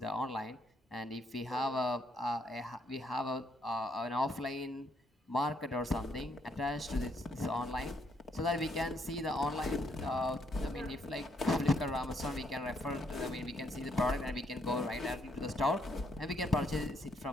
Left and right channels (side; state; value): both; normal; correlation 0.73